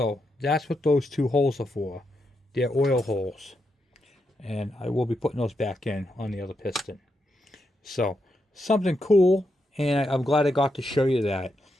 that's what those 2 holes are for. They're oil holes. And I will be putting those back in on the other piston. So something cool, and I'm glad I got to show you that.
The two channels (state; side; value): normal; both; correlation 0.83